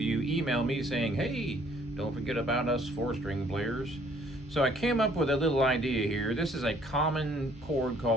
email me saying, hey, don't forget about us 4-string players. So I came up with a little idea here. This is a common chord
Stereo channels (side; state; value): both; normal; correlation 0.61